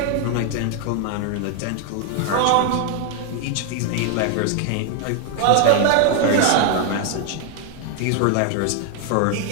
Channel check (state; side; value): different; both; correlation 0.00